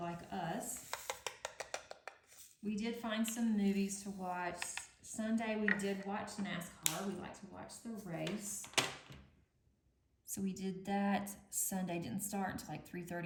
us? We did find some movies to watch. Sunday we did watch NASCAR. We like to watch the race. So we did that. Sunday didn't start until like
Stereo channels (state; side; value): identical; both; correlation 1.00